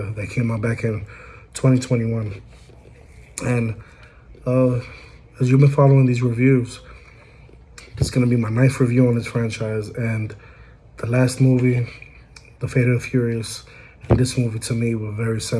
that came out back in 2021. And as you've been following these reviews, it's gonna be my ninth review on this franchise. And the last movie, The Fate of the Furious, and this movie to me were very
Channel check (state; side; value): identical; both; correlation 1.00